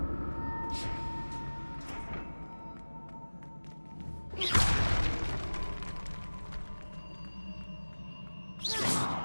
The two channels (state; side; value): inverted; both; correlation -1.00